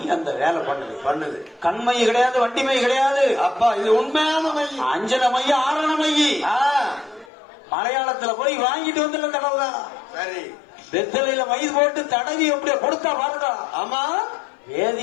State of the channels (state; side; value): drops out; right; at 7.2 s